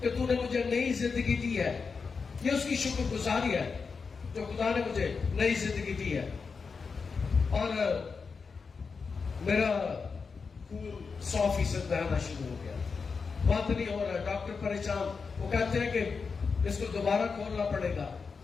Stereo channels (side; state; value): right; quieter; 5.1 dB